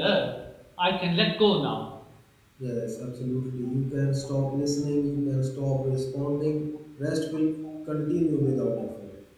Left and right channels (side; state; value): both; identical; correlation 1.00